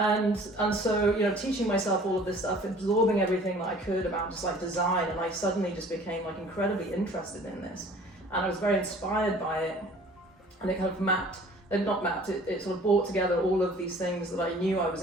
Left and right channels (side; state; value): both; normal; correlation 0.50